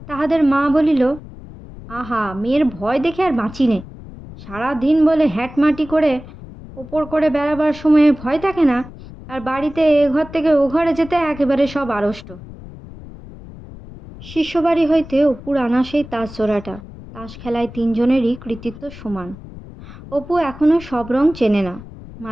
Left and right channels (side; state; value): left; noise; rumble, 16 dB below the sound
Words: তাহাদের মা বলিল, আহা, মেয়ের ভয় দেখে আর বাঁচি নে। সারাদিন বলে হ্যাটমাটি করে ওপর করে বেড়াবার সময়ে ভয় থাকে না, আর বাড়িতে এ ঘর থেকে ও ঘরে যেতে একেবারে সব আড়ষ্ট। শিষ্যবাড়ি হইতে অপুর আনা সেই তাস জোড়াটা। তাস খেলায় 3 জনেরই কৃতিত্ব সমান। অপু এখনো সব রং চেনে না।